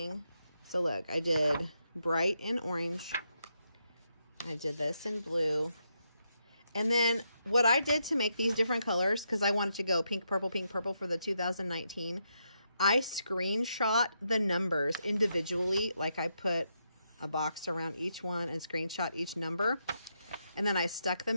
So look, I did bright in orange. I did this in blue. And then what I did to make these different colors, because I wanted to go pink, purple for the 2019, I screenshot the numbers individually. Like I put a box around each one and screenshot each number. And then I stuck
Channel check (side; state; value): both; inverted; correlation -0.81